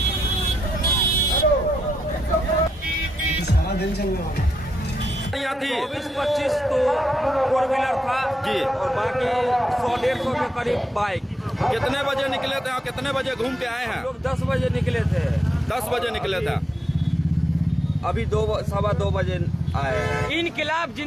सारा दिन चलने वाला 24-25 तो 4 व्हीलर था जी और बाकी 100-150 के करीब बाइक। कितने बजे निकले थे और कितने बजे घूम के आए हैं? लोग 10 बजे निकले थे। 10 बजे निकले थे। अभी 2-2:15 बजे आए हैं। इनकलाब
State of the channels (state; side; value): normal; both; correlation 0.83